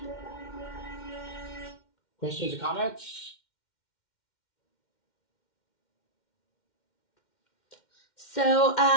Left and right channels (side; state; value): right; late; 2.1 ms